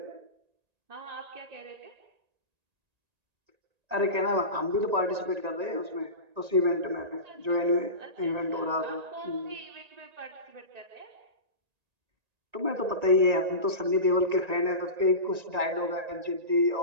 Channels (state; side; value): late; left; 1.9 ms